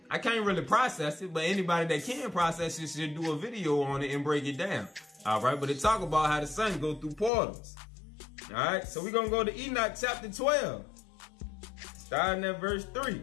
I can't really process it, but anybody that can process it should do a video on it and break it down, all right? But it talk about how the sun go through portals. All right, so we're going to go to Enoch chapter 12, starting at verse 3.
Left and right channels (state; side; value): drops out; right; at 7.3 s